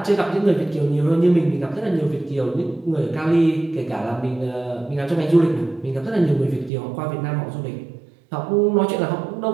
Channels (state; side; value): drops out; left; at 6.7 s